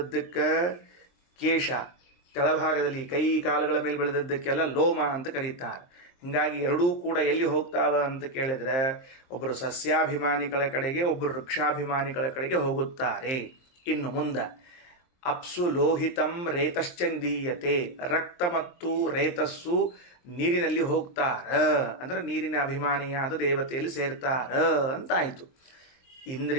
ಕೇಶ, ಕೆಳಭಾಗದಲ್ಲಿ ಕೈ ಕಾಲುಗಳ ಮೇಲೆ ಬೆಳೆದದ್ದಕ್ಕೆಲ್ಲ ಲೋಮ ಅಂತ ಕರೀತಾರೆ. ಹೀಗಾಗಿ ಎರಡೂ ಕೂಡ ಎಲ್ಲಿ ಹೋಗ್ತಾವ ಅಂತ ಕೇಳಿದ್ರೆ ಒಬ್ಬರು ಸಸ್ಯಾಭಿಮಾನಿಗಳ ಕಡೆಗೆ, ಒಬ್ಬರು ವೃಕ್ಷಾಭಿಮಾನಿಗಳ ಕಡೆಗೆ ಹೋಗುತ್ತಾರೆ. ಇನ್ನು ಮುಂದೆ ಅಪ್ಸು ಲೋಹಿತಂ ರೇತಶ್ಚ ನಿಧೀಯತೆ, ರಕ್ತ ಮತ್ತು ರೇತಸ್ಸು ನೀರಿನಲ್ಲಿ ಹೋಗ್ತಾರ, ಅಂದ್ರೆ ನೀರಿನ ಅಭಿಮಾನಿಯಾದ ದೇವತೆಯಲ್ಲಿ ಸೇರ್ತಾರ ಅಂತಾಯಿತು.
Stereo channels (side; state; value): right; late; 23 ms